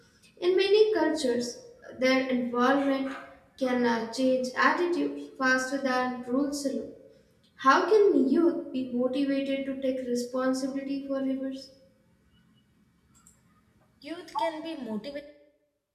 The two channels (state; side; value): identical; both; correlation 1.00